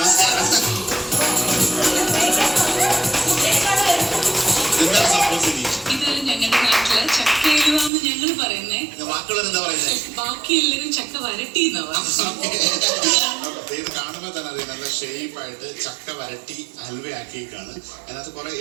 എന്താണ് സംഭവം സിനി? ഇത് ഞങ്ങളുടെ നാട്ടില് ചക്കയിലുവാന്ന് ഞങ്ങൾ പറയുന്നേ. ബാക്കിയുള്ളവർ എന്താ പറയുന്നത്? ബാക്കി എല്ലാവരും ചക്ക വരട്ടി ഇത് കാണുമ്പോൾ തന്നെ അറിയാം, നല്ല ഷേപ്പായിട്ട് ചക്ക വരട്ടി ഹൽവയാക്കിയേക്കാണ്. അതിനകത്ത് കുറെ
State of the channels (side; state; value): left; drops out; at 7.9 s